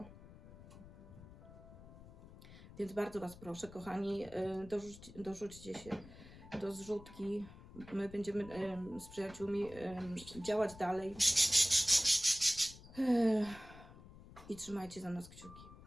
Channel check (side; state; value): left; noise; rumble, 18 dB below the sound